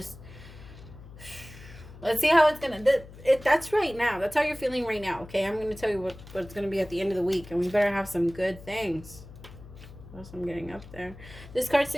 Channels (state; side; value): noise; left; hum, 17 dB below the sound